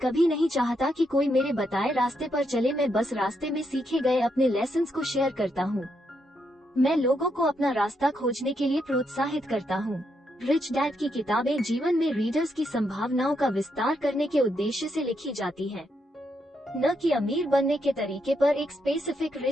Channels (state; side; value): normal; both; correlation 0.79